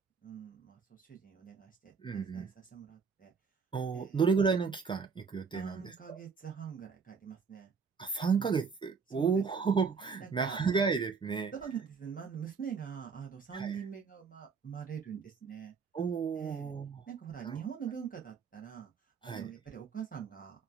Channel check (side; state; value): left; quieter; 5.5 dB